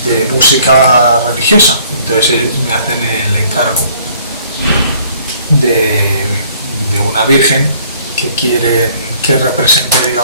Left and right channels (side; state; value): both; inverted; correlation -0.58